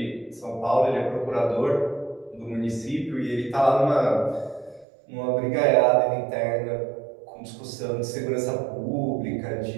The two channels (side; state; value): left; drops out; at 4.9 s